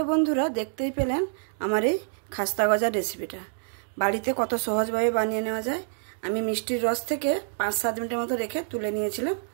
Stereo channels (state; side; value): silent; left; digital silence